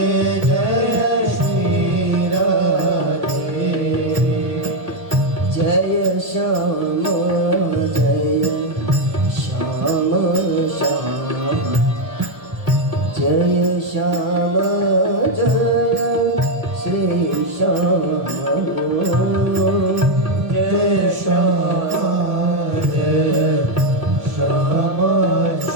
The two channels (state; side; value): late; left; 1.2 ms